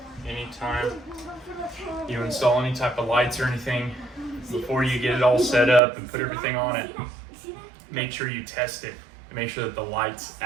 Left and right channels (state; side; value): drops out; left; at 5.8 s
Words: anytime you install any type of lights or anything, before you get it all set up and put everything on it, make sure you test it and make sure that the lights